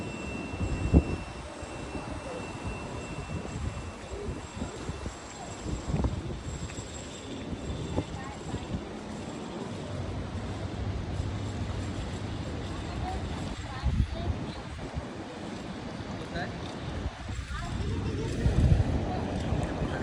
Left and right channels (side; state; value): both; identical; correlation 1.00